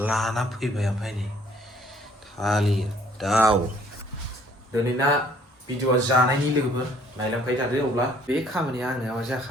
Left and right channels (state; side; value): normal; both; correlation 0.60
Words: लाना फैबाय ओमफ्राय नै थालिर दाउ दिनैना भिडिअ'आ जानायनि लोगोफोर नायलांबाय थादो अब्ला बे खामानिया आंना मा